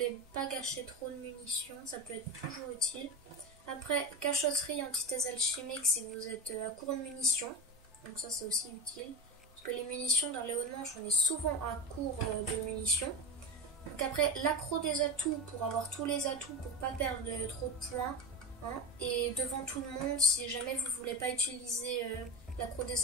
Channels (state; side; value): normal; both; correlation 0.23